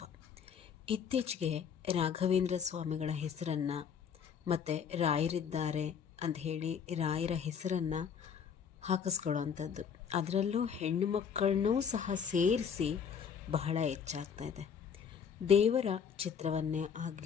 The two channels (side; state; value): right; quieter; 7.1 dB